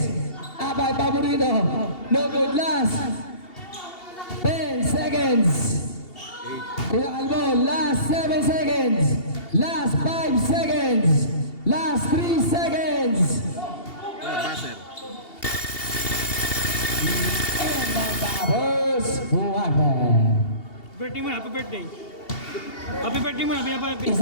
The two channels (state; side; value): late; right; 2.8 ms